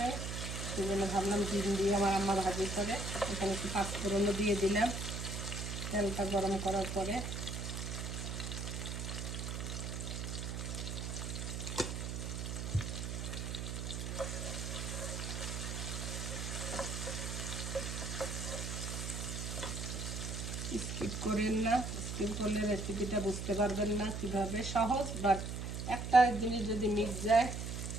সেই জন্য ভাবলাম ডিম দিয়ে আমার আম্মা ভাজি করে। এখানে একটু পাঁচফোড়নও দিয়ে দিলাম তেলটা গরম করার পরে। স্কিপ করেন না, স্কিপ করলে রেসিপিটা বুঝতে পারবেন না কিভাবে। সহজ, বাট একটা জিনিস যদি মিক্স যায়।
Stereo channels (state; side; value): noise; right; hum, 4 dB below the sound